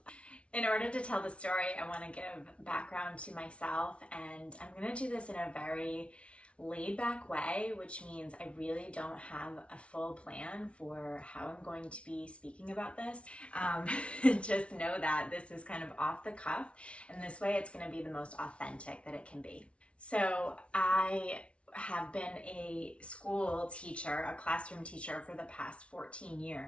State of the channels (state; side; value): late; right; 0.061 ms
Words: In order to tell the story, I want to give background to myself, and I'm going to do this in a very laid back way, which means I really don't have a full plan for how I'm going to be speaking about this. Just know that this is kind of off the cuff, and this way it's going to be the most authentic that it can be. So I have been a school teacher, a classroom teacher for the past 14